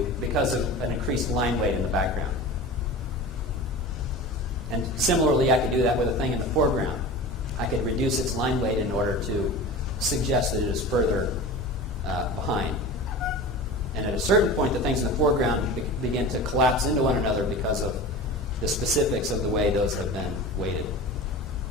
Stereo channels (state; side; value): normal; both; correlation 0.34